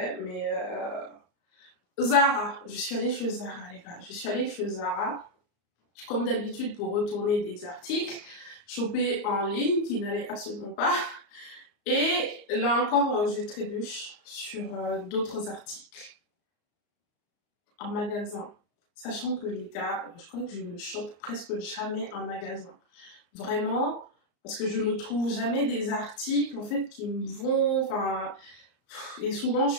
mais Zara. Je suis allée chez Zara, les gars. Je suis allée chez Zara, comme d'habitude, pour retourner des articles, choper en ligne, qui n'allait absolument pas. Et là encore, je trébuche sur d'autres articles en magasin. Sachant que les gars, je crois que je ne chope presque jamais en magasin. Vraiment, parce que je ne trouve jamais des articles en fait qui me vont, enfin, et souvent je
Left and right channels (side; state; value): right; late; 34 ms